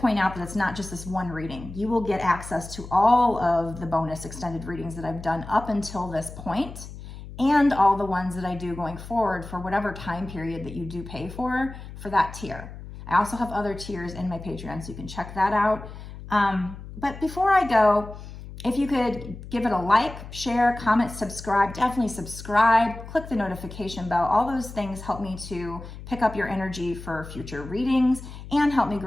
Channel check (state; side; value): noise; left; hum, 13 dB below the sound